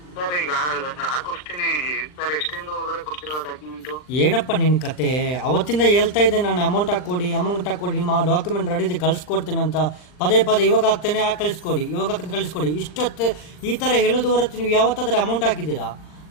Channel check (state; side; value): late; right; 39 ms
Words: ಸರ್, ಈಗ ಹಾಕಿಸ್ತೀನಿ ಸರ್. ಎಷ್ಟಿಂದ ಒಳಗಡೆ ಕೊಡ್ತಿರೋ ಡಾಕ್ಯುಮೆಂಟು? ಏನಪ್ಪ ನಿನ್ನ ಕತೆ? ಅವತ್ತಿಂದ ಹೇಳ್ತಾ ಇದ್ದೆ ನಾನು, ಅಮೌಂಟ್ ಹಾಕ್ಕೊಡಿ, ನಿಮ್ಮ ಡಾಕ್ಯುಮೆಂಟ್ ರೆಡಿ ಇದೆ ಕಳಿಸ್ಕೊಡ್ತೇನೆ ಅಂತ. ಪದೇ ಪದೇ ಇವಾಗ ಹಾಕ್ತೇನೆ, ಕಳಿಸ್ಕೊಡಿ, ಇವಾಗ ಕಳಿಸ್ಕೊಡಿ. ಇಷ್ಟೊತ್ತು ಈ ಥರ ಹೇಳೋದು ಹೊರತು ನೀವು ಯಾವತ್ತಾದ್ರೆ ಅಮೌಂಟ್ ಹಾಕಿದ್ದೀರಾ?